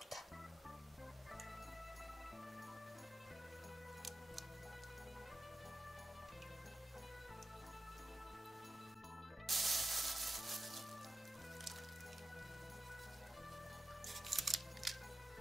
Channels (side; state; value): both; normal; correlation 0.92